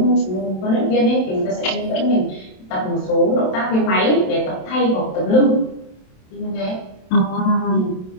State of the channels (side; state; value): right; late; 27 ms